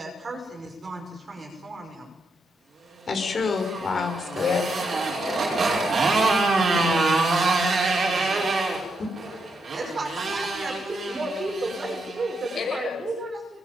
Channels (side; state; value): both; normal; correlation 0.81